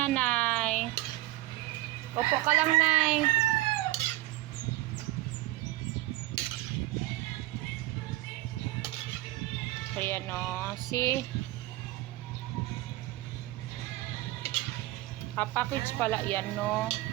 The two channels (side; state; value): left; quieter; 18.2 dB